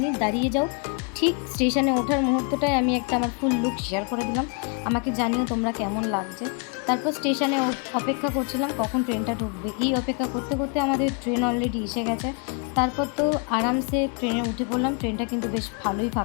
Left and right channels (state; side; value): quieter; right; 37.2 dB